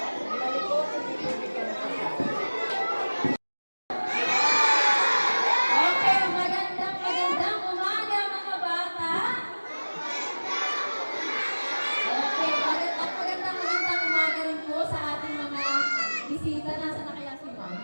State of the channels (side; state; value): both; inverted; correlation -1.00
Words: Okay, magandang umaga mga bisita, nasa na kaya si Ma'am?